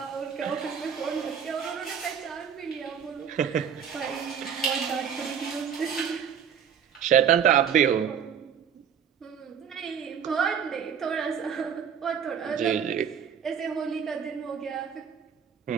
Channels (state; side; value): quieter; left; 7.8 dB